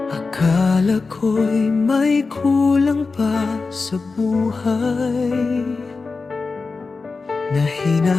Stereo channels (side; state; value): right; quieter; 4.2 dB